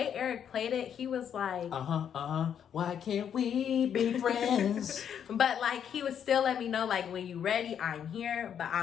Eric played it, he was like, why can't we be friends? But like, he would still let me know, like, when you ready, I'm here, but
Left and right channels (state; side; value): quieter; right; 8.6 dB